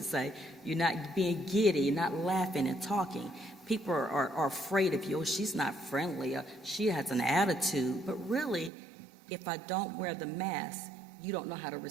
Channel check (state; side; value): drops out; left; at 8.7 s